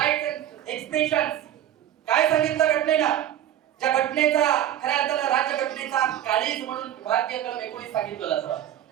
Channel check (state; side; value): quieter; left; 11.5 dB